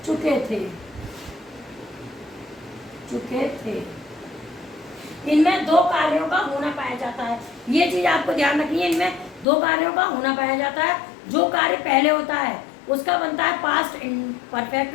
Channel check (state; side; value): drops out; right; at 9.5 s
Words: चुके थे, चुके थे। इनमें दो कार्यों का होना पाया जाता है। ये चीज आपको ध्यान रखनी है, इनमें दो कार्यों का होना पाया जाता है। जो कार्य पहले होता है उसका बनता है पास्ट परफेक्ट